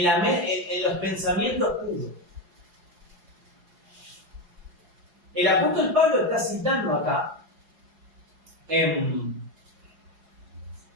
los pensamientos puros. El apóstol Pablo está citando acá en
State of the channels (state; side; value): late; left; 4.8 ms